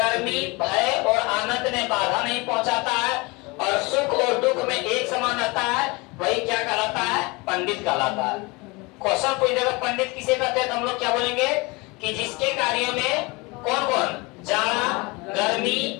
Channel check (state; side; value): quieter; right; 25.9 dB